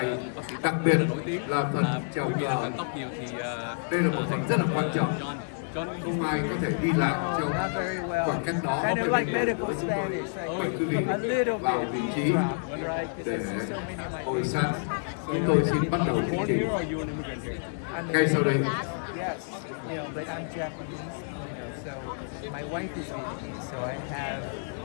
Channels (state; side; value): silent; right; 59 dB below the other